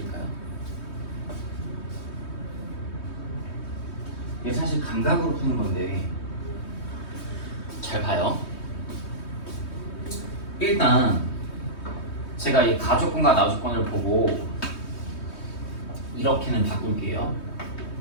이게 사실 감각으로 푸는 건데 잘 봐요. 일단 제가 이 가조건과 나조건을 보고 이렇게는 바꿀게요.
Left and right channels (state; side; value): late; right; 3.2 ms